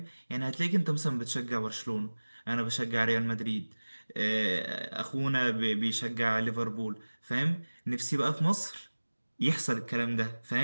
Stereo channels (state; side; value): inverted; both; correlation -1.00